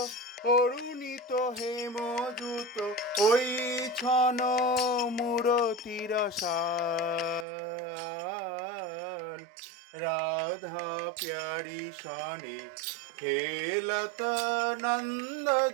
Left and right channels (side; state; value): left; drops out; at 7.5 s